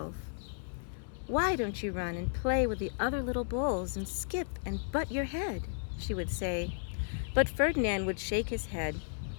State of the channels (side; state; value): right; silent; digital silence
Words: "Why don't you run and play with the other little bulls and skip and butt your head?" she would say. But Ferdinand would shake his head.